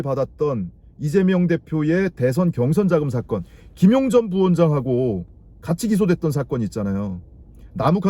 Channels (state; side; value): identical; both; correlation 1.00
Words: 받았던 이재명 대표의 대선 경선 자금 사건, 김용 전 부원장하고 같이 기소됐던 사건이 있잖아요.